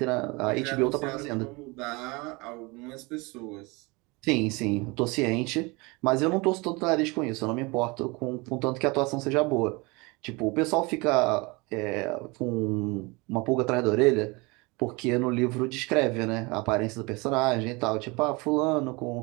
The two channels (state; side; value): quieter; left; 26.2 dB